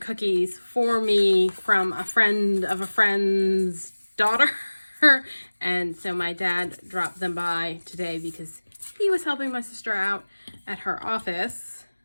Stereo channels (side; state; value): both; inverted; correlation -1.00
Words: for me from a friend of a friend's daughter. And so my dad dropped them by today because he was helping my sister out at her office.